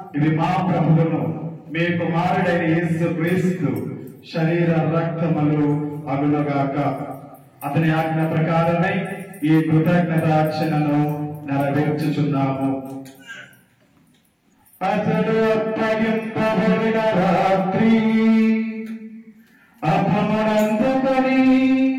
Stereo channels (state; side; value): identical; both; correlation 1.00